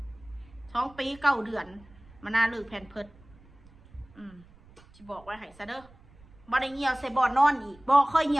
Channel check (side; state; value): right; noise; rumble, 25 dB below the sound